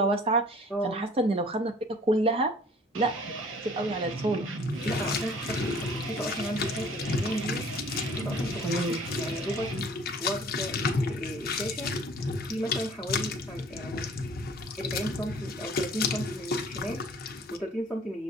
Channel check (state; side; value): normal; both; correlation 0.51